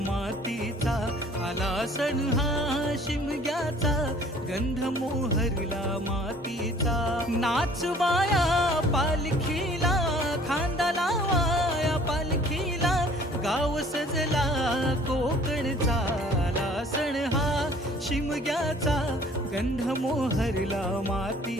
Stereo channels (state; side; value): normal; both; correlation 0.54